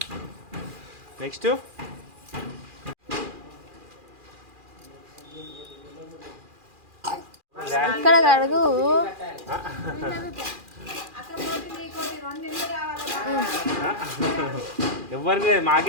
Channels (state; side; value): late; left; 2.4 ms